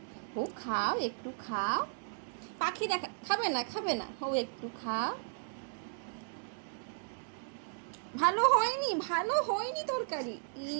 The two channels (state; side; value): silent; left; digital silence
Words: ও খাও, একটু খাও। পাখি দেখা খাবে না, খাবে না, ও একটু খাও। ভালো হয়নি, ভালো হয়নি তরকারি।